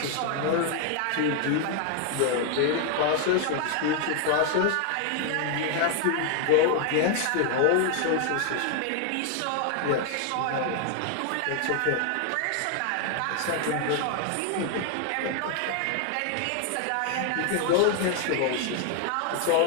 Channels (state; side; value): different; both; correlation 0.00